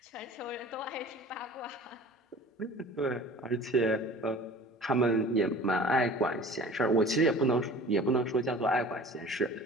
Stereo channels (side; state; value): both; normal; correlation 0.43